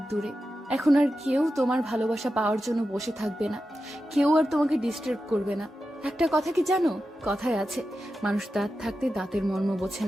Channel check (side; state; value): both; normal; correlation 0.91